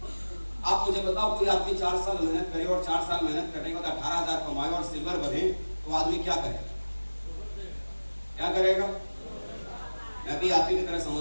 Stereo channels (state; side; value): inverted; both; correlation -1.00